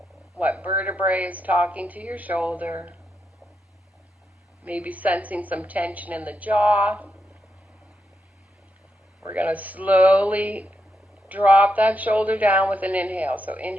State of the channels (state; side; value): normal; both; correlation 0.84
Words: What vertebrae is talking to your shoulder. Maybe sensing some tension in the jaw. We're going to slowly drop that shoulder down with an inhale. So